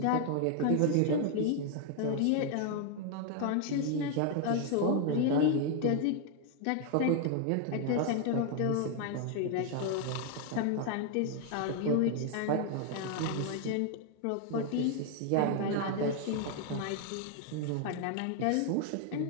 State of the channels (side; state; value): both; different; correlation 0.00